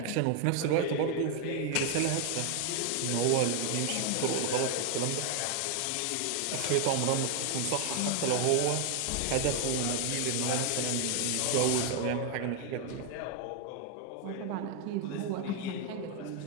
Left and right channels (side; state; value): both; different; correlation 0.00